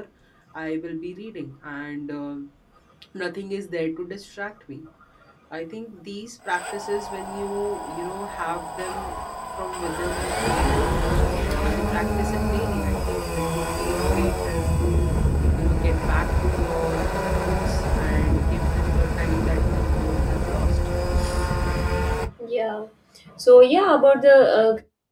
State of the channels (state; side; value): identical; both; correlation 1.00